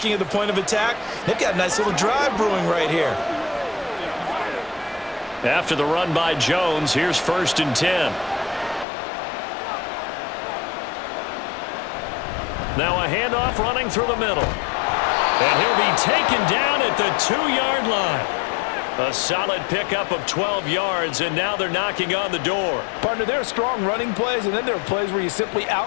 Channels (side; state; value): right; drops out; at 8.8 s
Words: at the point of attack. They've got a nice little drive brewing right here. After the run by Jones, here's 1st and 10. Now a handoff running through the middle. And he'll be taken down at the 2-yard line. A solid pickup of 12 yards, and now they're knocking on the door. Partner, there are strong running plays, and then there are plays where you simply